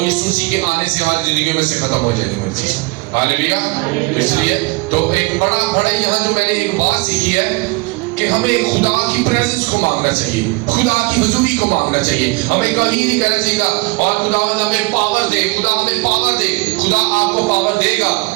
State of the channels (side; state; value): left; quieter; 25.4 dB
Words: یسوع مسیح کے آنے سے ہماری زندگیوں میں سے ختم ہو جائے گا. ہاللیلویا. اس لیے تو ایک بڑا یہاں جو میں نے ایک بات سیکھی ہے کہ ہمیں خدا کی پریزنس کو مانگنا چاہیے, خدا کی حضوری کو مانگنا چاہیے. ہمیں کہیں نہیں کہنا چاہیے اور خدا ہمیں پاور دے, خدا ہمیں پاور دے. خدا آپ کو پاور دے گا,